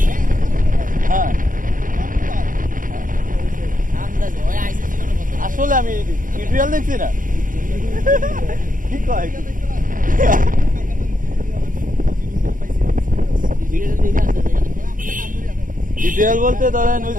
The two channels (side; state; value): left; late; 0.39 ms